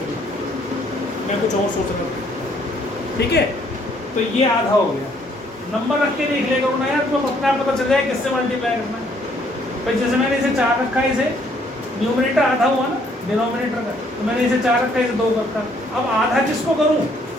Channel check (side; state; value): both; normal; correlation 0.66